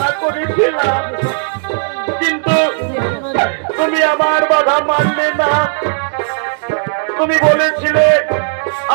করেছিলাম, কিন্তু তুমি আমার বাধা মানলে না। তুমি বলেছিলে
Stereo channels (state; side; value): silent; left; digital silence